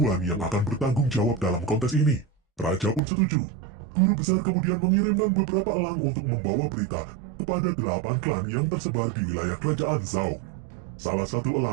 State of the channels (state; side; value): drops out; left; at 3.0 s